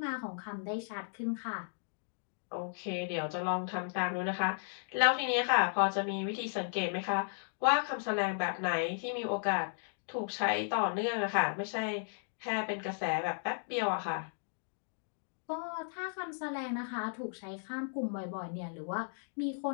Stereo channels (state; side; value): silent; right; digital silence